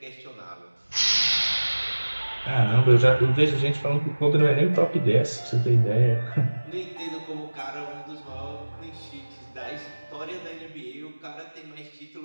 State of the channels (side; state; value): both; inverted; correlation -1.00